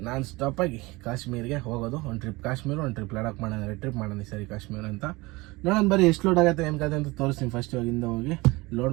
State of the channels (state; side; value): quieter; left; 22.7 dB